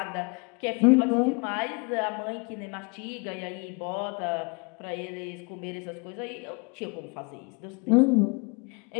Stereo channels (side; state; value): right; quieter; 31.7 dB